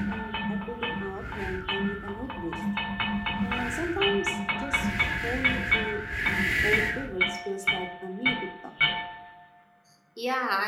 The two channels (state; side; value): identical; both; correlation 1.00